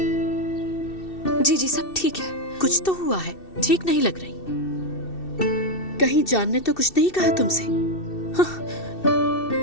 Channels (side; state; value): right; late; 2.7 ms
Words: जी जी सब ठीक है। कुछ तो हुआ है, ठीक नहीं लग रही। कहीं जान ने तो कुछ नहीं कहा तुमसे?